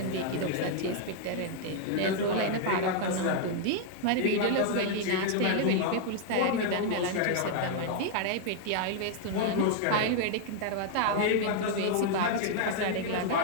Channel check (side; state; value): both; different; correlation 0.00